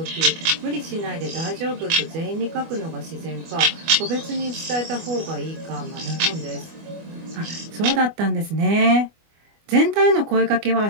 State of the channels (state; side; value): late; left; 25 ms